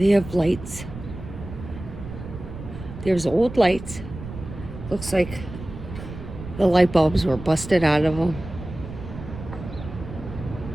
have lights. There's old lights. Looks like the light bulbs were busted out of them.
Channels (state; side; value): noise; right; rumble, 11 dB below the sound